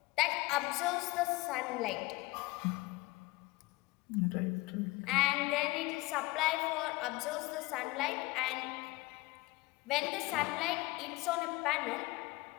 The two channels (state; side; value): quieter; right; 21.7 dB